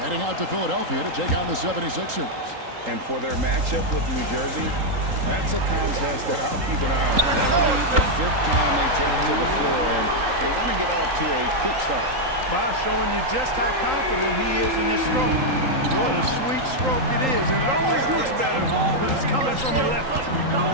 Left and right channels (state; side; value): late; left; 3.8 ms